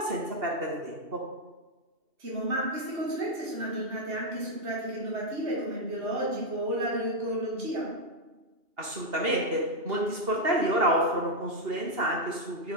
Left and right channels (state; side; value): late; left; 2.8 ms